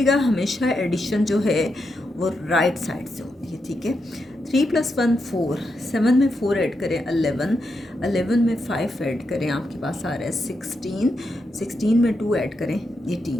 हमेशा एडिशन जो है वो राइट साइड से होती है। ठीक है, 3 प्लस 1 4, 7 में 4 ऐड करें 11, 11 में 5 ऐड करें, आपके पास आ रहा है 16, 16 में 2 ऐड करें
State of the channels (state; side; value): normal; both; correlation 0.84